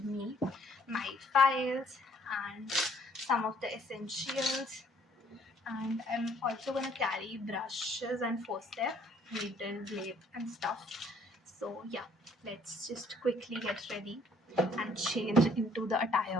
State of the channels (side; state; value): both; normal; correlation 0.62